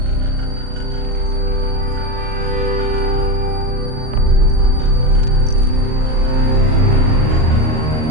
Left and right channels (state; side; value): late; left; 38 ms